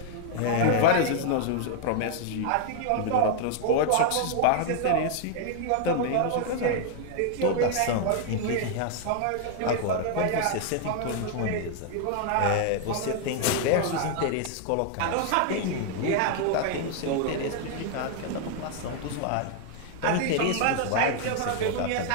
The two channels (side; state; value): both; different; correlation 0.00